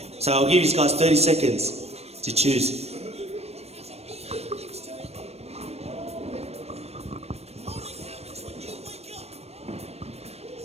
So I'll give you guys 30 seconds to choose.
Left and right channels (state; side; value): late; left; 0.31 ms